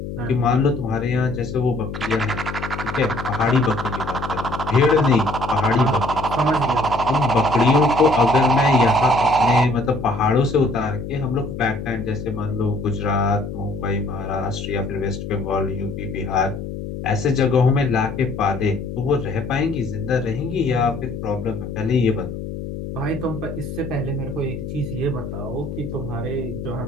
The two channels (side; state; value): left; noise; hum, 7 dB below the sound